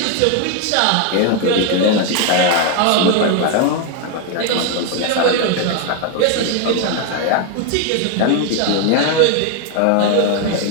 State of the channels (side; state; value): both; different; correlation 0.01